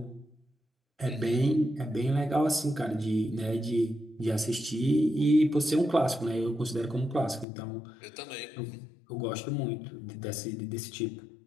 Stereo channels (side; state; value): right; drops out; at 7.5 s